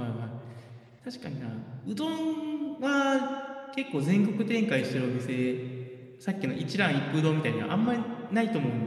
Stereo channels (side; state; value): both; identical; correlation 1.00